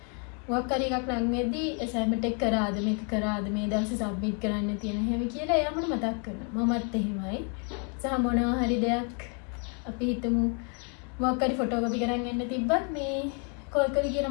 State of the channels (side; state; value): right; quieter; 38.8 dB